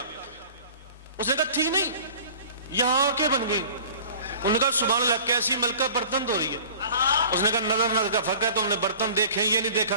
اس نے کہا تھی نہیں، یہاں کے بن گئی۔ انہوں نے کہا سبحان اللہ، کیسی ملکہ برتن دھو رہی ہے؟ اس نے کہا نظر کا فرق ہے، تم نے برتن دیکھے یہ نہیں دیکھا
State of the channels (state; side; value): inverted; both; correlation -0.44